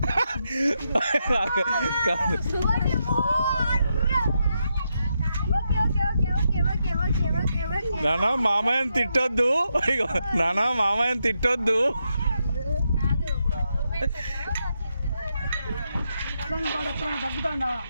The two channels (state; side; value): inverted; both; correlation -0.83